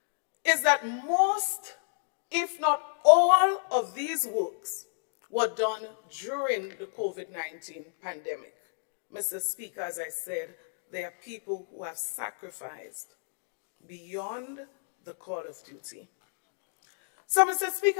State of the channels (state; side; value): silent; right; digital silence